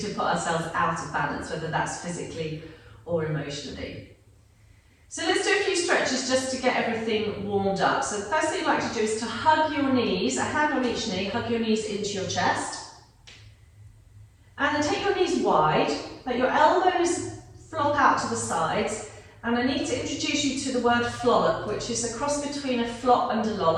to put ourselves out of balance, whether that's physically or emotionally. So let's do a few stretches just to get everything warmed up. So the first thing you'd like to do is to hug your knees, a hand on each knee, hug your knees into your chest. And then take your knees wide, let your elbows flop out to the sides, and I need to introduce you to the word flollop, which is a cross between a flop and a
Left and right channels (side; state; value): both; identical; correlation 1.00